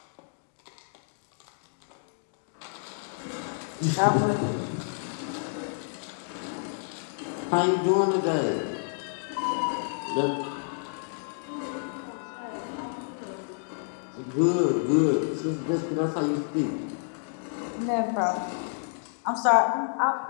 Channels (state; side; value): silent; right; digital silence